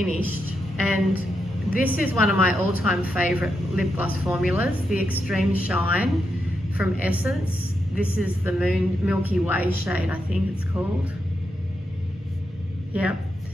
and this is one of my all-time favorite lip gloss formulas, the Extreme Shine from Essence. This is the Milky Way shade, I think it's called. Yeah,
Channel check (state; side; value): normal; both; correlation 0.84